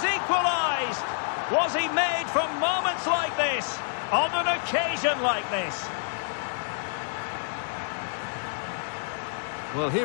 equalised! Was he made from moments like this? On an occasion like this? Well,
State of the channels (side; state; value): right; silent; digital silence